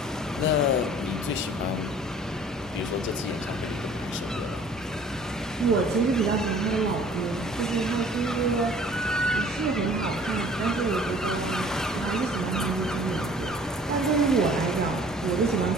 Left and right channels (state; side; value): normal; both; correlation 0.51